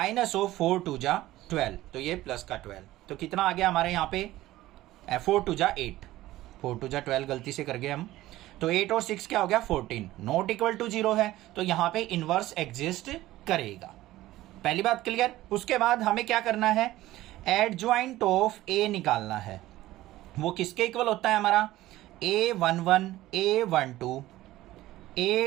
ऑफ 4 2 जा 12, तो ये प्लस का 12, तो कितना आ गया हमारे यहाँ पे 4 2 जा 8, 4 2 जा 12 गलती से कर गए हम, तो 8 और 6 क्या हो गया 14, नॉट इक्वल टू 0 है, तो यहाँ पे इनवर्स एग्जिस्ट करेगा। पहली बात क्लियर। उसके बाद हमें क्या करना है, एडजॉइंट ऑफ ए निकालना है। वो किसके इक्वल होता है हमारा, A11 A12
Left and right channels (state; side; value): quieter; left; 16.1 dB